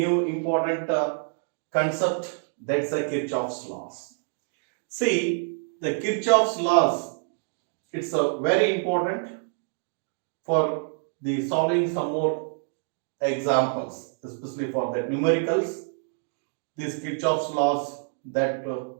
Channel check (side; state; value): left; silent; digital silence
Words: important concept, that's the Kirchhoff's laws. See, the Kirchhoff's laws, it's very important for the solving some more examples, especially for the numericals. These Kirchhoff's laws that